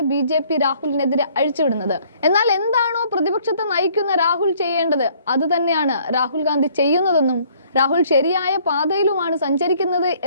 BJP രാഹുലിനെതിരെ അഴിച്ചുവിടുന്നത്. എന്നാൽ എന്താണോ പ്രതിപക്ഷത്തെ നയിക്കുന്ന രാഹുൽ ചെയ്യേണ്ടത് അത് തന്നെയാണ് രാഹുൽ ഗാന്ധി ചെയ്യുന്നതെന്നും രാഹുൽ ശരിയായ പാതയിലുമാണ് സഞ്ചരിക്കുന്നത്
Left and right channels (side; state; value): both; inverted; correlation -0.61